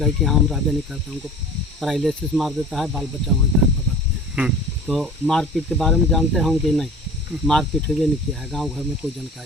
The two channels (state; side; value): normal; both; correlation 0.41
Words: कि हाँ हम रहबे नहीं करते, हमको पैरालिसिस मार देता है, बाल बच्चा वहीं घर पकड़ते हैं। तो मारपीट के बारे में जानते हैं कि नहीं, मारपीट हुए नहीं किया है, गांव घर में कोई